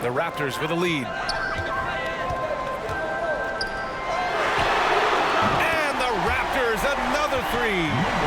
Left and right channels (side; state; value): both; identical; correlation 1.00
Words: The Raptors with a lead. And the Raptors another 3.